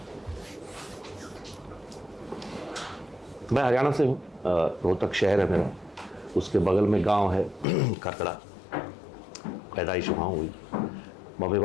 मैं हरियाणा से हूँ, रोहतक शहर है मेरा, उसके बगल में गांव है खरकड़ा। पैदाइश वहाँ हुई। मम्मी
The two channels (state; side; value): drops out; right; at 7.7 s